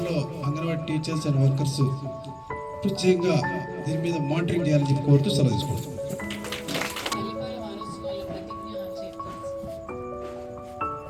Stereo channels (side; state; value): both; identical; correlation 1.00